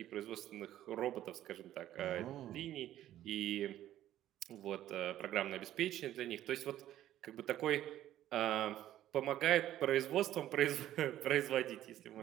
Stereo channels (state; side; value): quieter; left; 12.8 dB